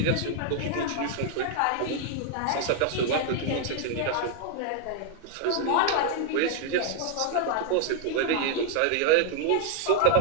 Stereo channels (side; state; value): both; different; correlation 0.00